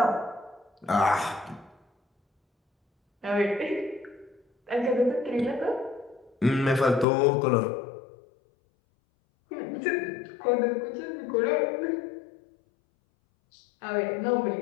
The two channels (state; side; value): drops out; right; at 7.1 s